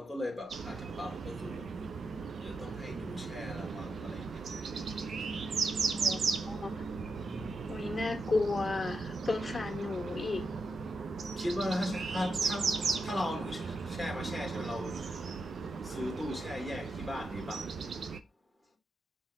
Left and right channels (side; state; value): both; normal; correlation 0.85